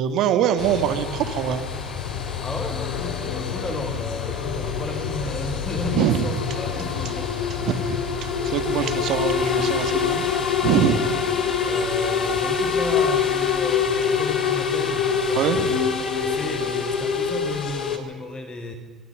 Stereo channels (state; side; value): normal; both; correlation 0.32